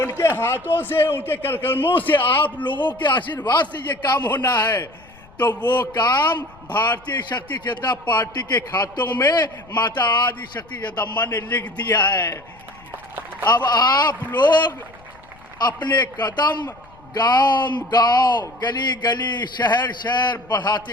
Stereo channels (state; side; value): noise; left; rumble, 25 dB below the sound